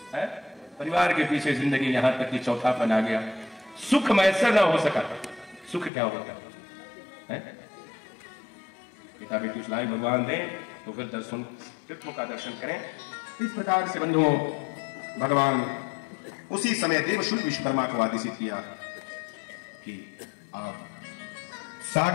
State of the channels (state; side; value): drops out; right; at 5.9 s